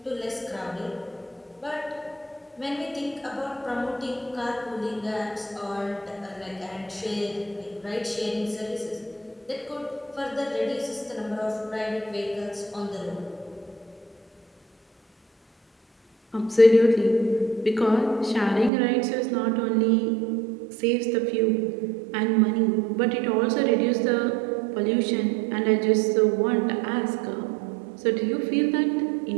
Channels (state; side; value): drops out; left; at 18.7 s